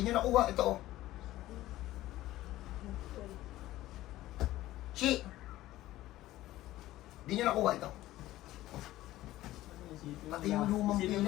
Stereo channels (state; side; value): quieter; right; 15.6 dB